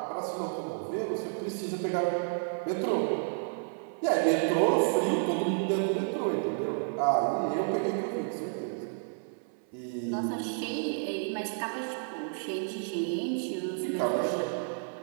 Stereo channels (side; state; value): left; silent; 57 dB below the other